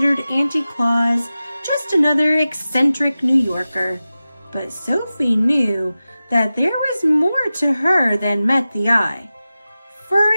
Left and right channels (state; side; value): inverted; both; correlation -0.95